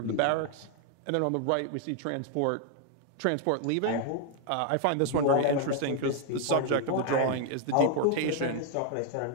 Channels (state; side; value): different; both; correlation 0.00